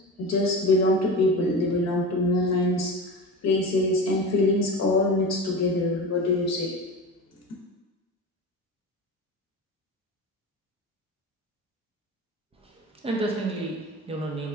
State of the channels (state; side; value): normal; both; correlation 0.29